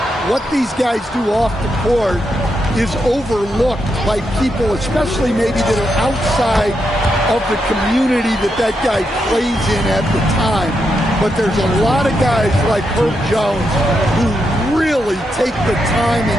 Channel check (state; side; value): normal; both; correlation 0.83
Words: what these guys do off the court is overlooked by people, especially maybe that are outside of the community that guy plays in at the time. But there's a lot of guys like Herb Jones who really take the time